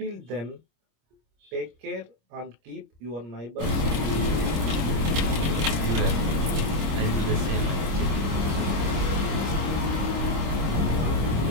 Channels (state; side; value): late; left; 26 ms